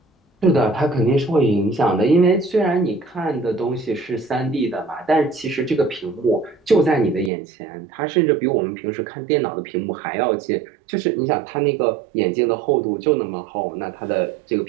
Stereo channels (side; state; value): left; drops out; at 7.3 s